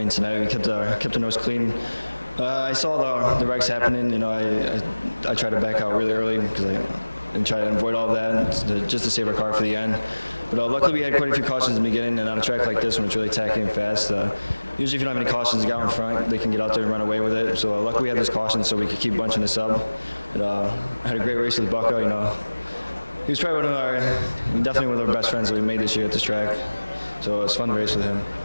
tonight. We kept the nose clean. I saw the wrecks happening. I tried to back out really early because and try to avoid all of that just to save our car for the end. But luckily we had quite a few cautions in the beginning, and on a track like this when it's really tacky and fast, usually if you don't have any cautions, the guy in front, they can get out there and run away with it. So luckily we had those cautions so we could keep bunching this up. And, I had a great race with Bucko. He was probably definitely one of our best friends that we made this year at this track. So it was fun to race with him.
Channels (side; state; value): both; inverted; correlation -1.00